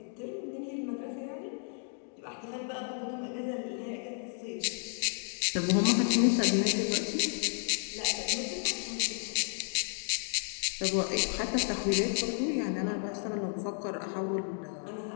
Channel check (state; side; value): silent; right; 56 dB below the other